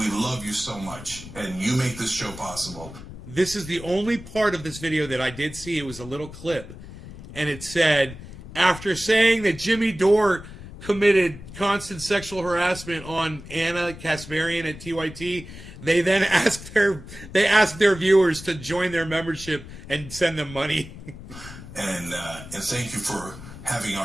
love you so much. And you make this show possible. This is the only part of this video that I did see. It was a little clip. And it said, after saying that Jimmy Dore committed constant sexual harassment on Anna Kasparian at TYT, they then asked their viewers to join their membership and send them money. And thank you for having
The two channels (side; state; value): left; noise; rumble, 14 dB below the sound